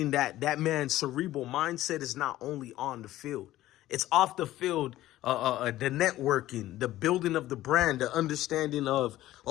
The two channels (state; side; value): quieter; right; 15.0 dB